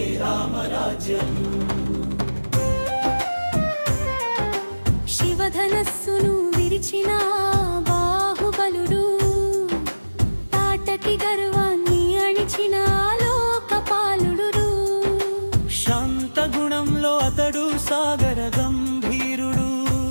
రామరాజ్యం. శివధనస్సును విరిచిన బాహుబలుడు, తాటకి గర్వాన్ని అణిచిన లోకపాలుడు. శాంత గుణంలో అతడు సాగర గంభీరుడు,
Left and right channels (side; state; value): both; inverted; correlation -1.00